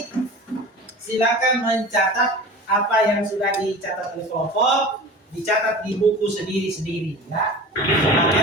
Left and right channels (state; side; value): normal; both; correlation 0.36